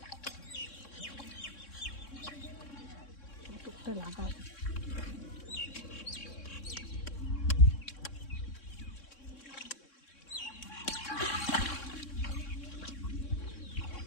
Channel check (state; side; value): late; right; 3.6 ms